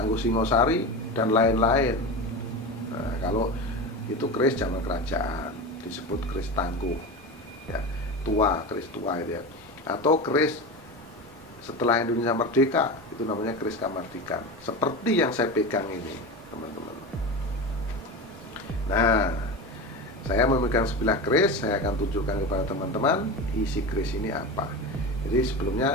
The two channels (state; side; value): normal; both; correlation 0.25